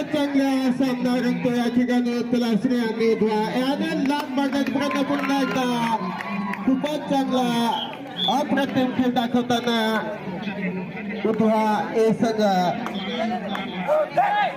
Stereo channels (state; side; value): identical; both; correlation 1.00